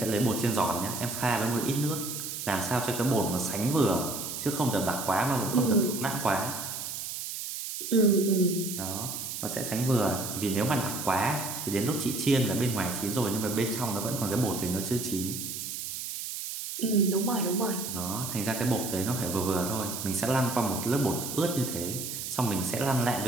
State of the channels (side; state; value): right; noise; hiss, 6 dB below the sound